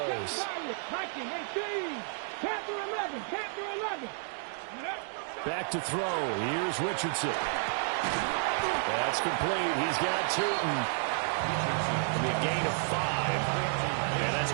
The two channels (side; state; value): left; silent; digital silence